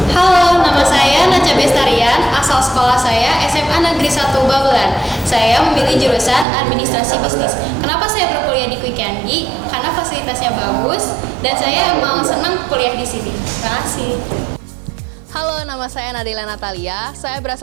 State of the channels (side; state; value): left; drops out; at 6.5 s